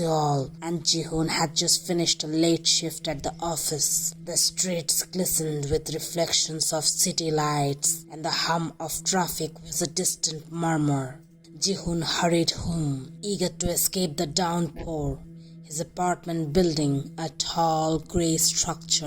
and Ji-Hoon had just finished a late shift at the office. The streets glistened with reflections of city lights, and the hum of traffic was a distant murmur. Ji-Hoon hurried home, eager to escape the downpour. His apartment building, a tall grey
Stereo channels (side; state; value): both; identical; correlation 1.00